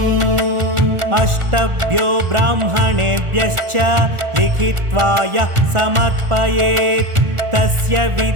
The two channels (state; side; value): late; left; 1.4 ms